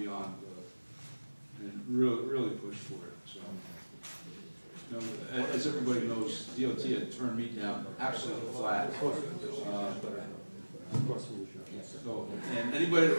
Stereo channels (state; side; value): inverted; both; correlation -1.00